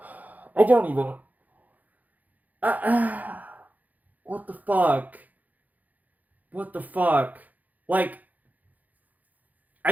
don't even... what the fuck? What the fuck? Like,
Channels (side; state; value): left; late; 0.080 ms